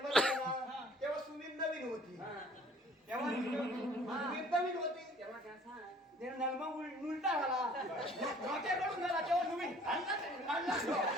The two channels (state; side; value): normal; both; correlation 0.53